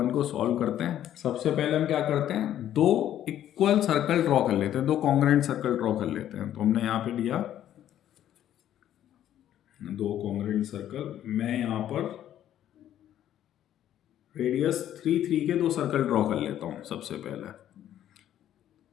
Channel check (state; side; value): quieter; right; 11.4 dB